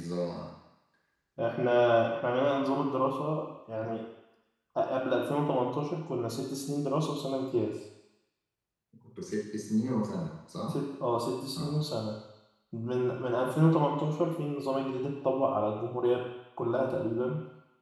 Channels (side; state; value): both; identical; correlation 1.00